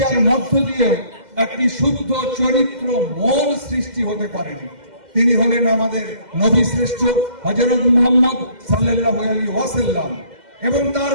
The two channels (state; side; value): late; left; 2.1 ms